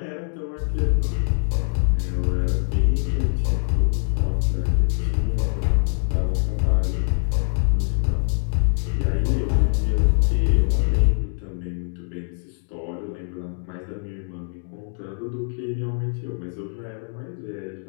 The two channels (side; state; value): right; silent; digital silence